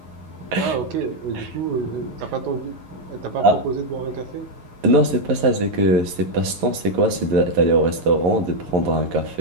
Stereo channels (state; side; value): late; left; 11 ms